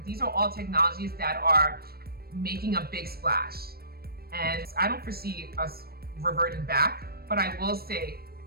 These are all technologies that are making a big splash. And I don't foresee us reverting back, but I will say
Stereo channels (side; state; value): left; late; 0.44 ms